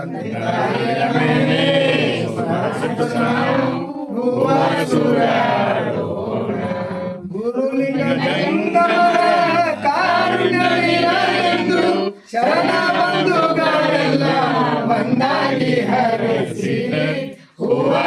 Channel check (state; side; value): identical; both; correlation 1.00